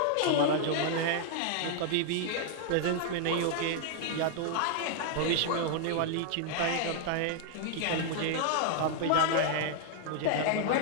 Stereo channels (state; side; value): different; both; correlation 0.00